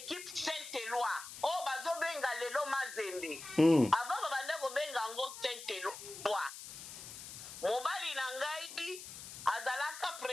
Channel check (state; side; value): noise; left; hiss, 11 dB below the sound